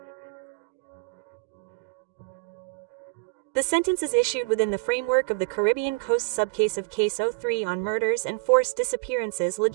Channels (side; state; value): left; quieter; 31.3 dB